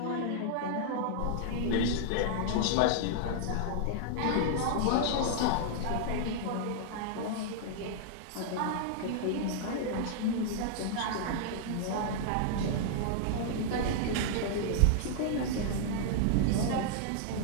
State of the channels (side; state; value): both; different; correlation -0.01